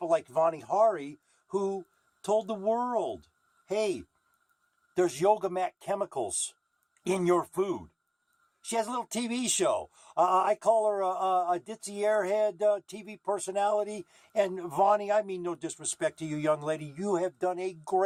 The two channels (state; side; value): identical; both; correlation 1.00